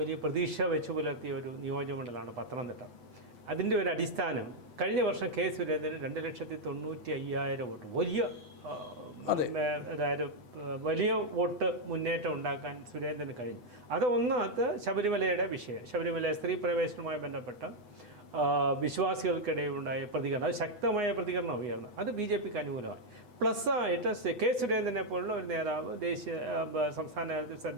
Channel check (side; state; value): left; late; 8.0 ms